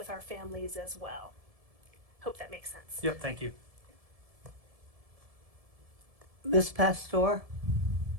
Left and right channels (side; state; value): left; late; 1.7 ms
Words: our families as well. Hope that makes sense. Yep, thank you. Ms. Pastor?